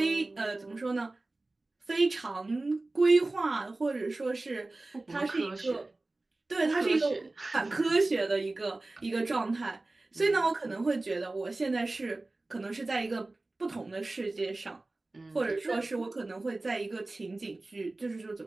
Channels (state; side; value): quieter; left; 3.0 dB